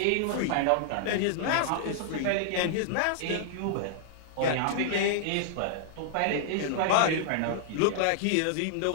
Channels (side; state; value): both; different; correlation -0.01